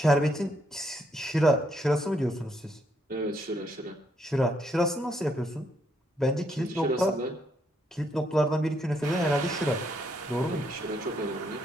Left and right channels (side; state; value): both; normal; correlation 0.74